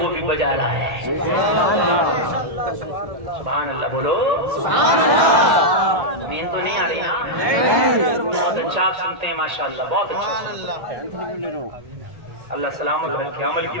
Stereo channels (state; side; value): late; left; 1.8 ms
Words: بھی بجا لائے. سبحان اللہ بولو. نیند تو نہیں آ رہی نا؟ بہت اچھا آپ سنتے ہیں ماشاءاللہ، بہت اچھا سنتے ہیں. اللہ سلامت رکھے، عمل کی